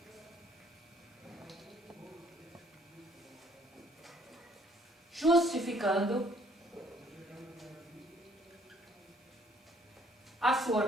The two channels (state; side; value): normal; both; correlation 0.62